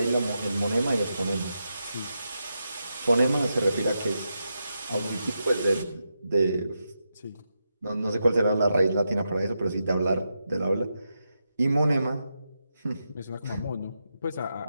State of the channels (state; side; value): inverted; both; correlation -0.86